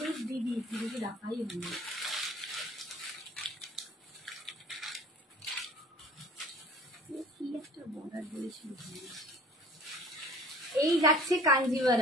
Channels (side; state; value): both; normal; correlation 0.47